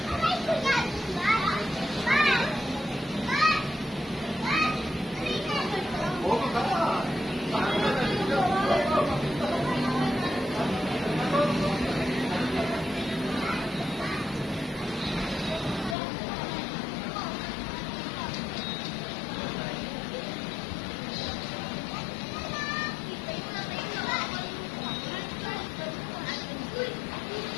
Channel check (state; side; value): drops out; right; at 16.0 s